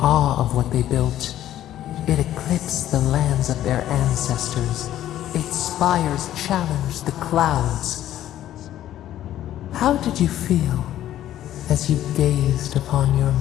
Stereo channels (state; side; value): quieter; right; 12.5 dB